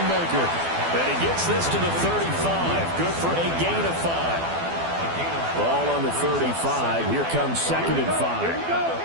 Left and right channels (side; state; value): left; late; 12 ms